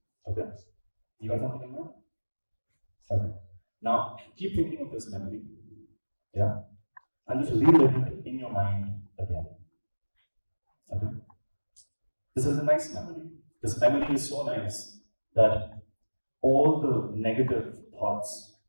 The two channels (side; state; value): both; inverted; correlation -1.00